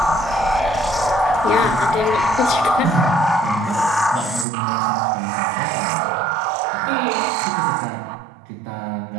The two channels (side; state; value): left; drops out; at 4.5 s